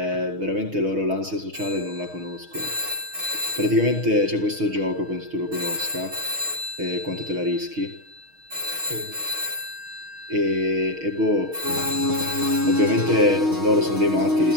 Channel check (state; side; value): late; left; 6.4 ms